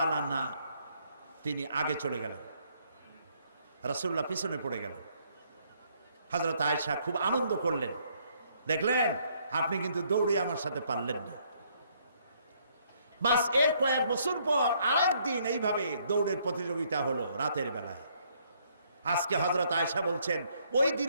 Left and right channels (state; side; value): inverted; both; correlation -0.68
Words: আনহা তিনি আগে চলে গেলেন, রাসূলুল্লাহ পিছনে পড়ে গেলেন। হযরত আয়েশা খুব আনন্দ করলেন, দেখলেন আপনি কিন্তু দৌড়ে আমার সাথে পারলেন না। বাস এর কয়েক বছর পর আরেকদিন এইভাবে দৌড়ের প্রতিযোগিতা হলো রাতের বেলায়। আজকে হযরত আয়েশা বলছেন, ওই